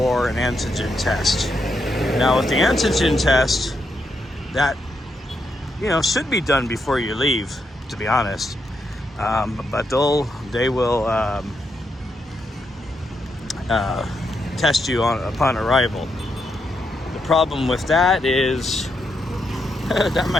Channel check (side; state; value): both; normal; correlation 0.81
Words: an antigen test. Now with the antigen test, that should be done before you leave, to be honest. But they will test you upon arrival. The problem with that is that